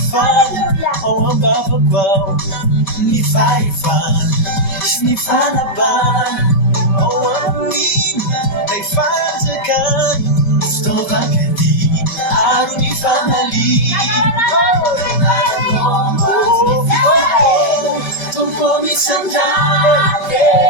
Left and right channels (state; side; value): late; right; 5.3 ms